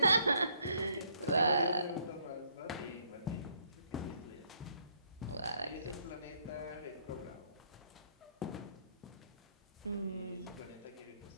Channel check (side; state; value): both; inverted; correlation -0.69